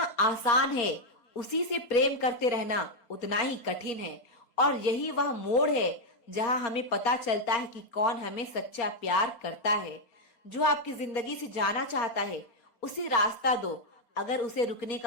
है, उसी से प्रेम करते रहना उतना ही कठिन है। और यही वह मोड़ है जहां हमें पता चलता है कि कौन हमें सच्चा प्यार करता है। जो आपकी जिंदगी से जाना चाहता है उसे रास्ता दो। अगर उसे रुकने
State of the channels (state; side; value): late; right; 4.3 ms